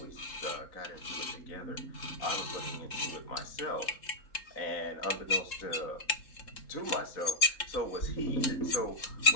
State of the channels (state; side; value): late; right; 3.7 ms